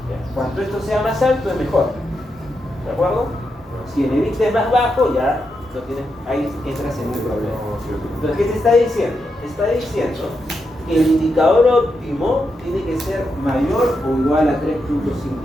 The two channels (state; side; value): normal; both; correlation 0.84